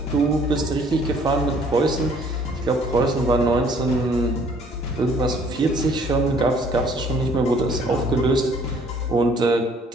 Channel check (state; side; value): normal; both; correlation 0.59